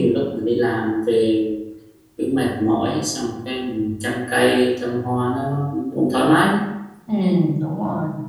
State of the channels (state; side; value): identical; both; correlation 1.00